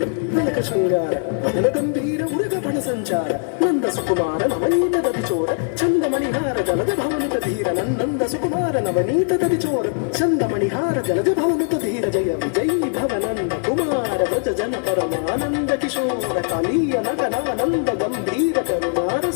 తిలక శృంగార వదన గంభీర ఉరగ పణ సంచార నంద సుకుమార నవనీత దతిచోర చందమణిహార జలద భవనుత ధీర నంద సుకుమార నవనీత దతిచోర చందమణిహార జలద భవనుత ధీర జయ విజయీ భవనంద కుమార వ్రజ జన పరమానంద కిశోర కాళీయ నగనానంద గంభీర కరుణార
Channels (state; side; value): silent; right; 56 dB below the other